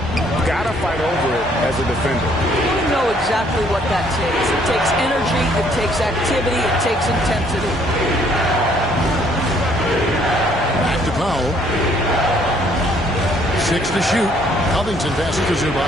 Got to fight over it as a defender. You know exactly what that takes. It takes energy, it takes activity, it takes intensity. Back to Powell. 6 to shoot. Covington passes to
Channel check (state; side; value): normal; both; correlation 0.64